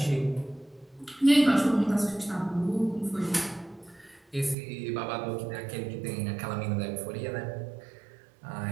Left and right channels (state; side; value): drops out; left; at 4.5 s